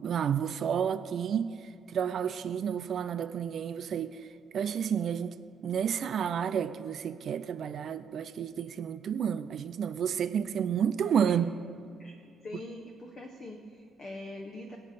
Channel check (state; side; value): quieter; left; 7.4 dB